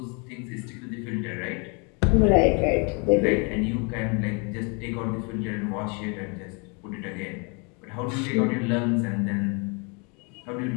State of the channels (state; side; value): quieter; right; 33.5 dB